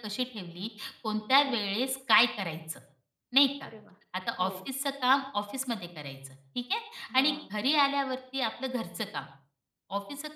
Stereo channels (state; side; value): identical; both; correlation 1.00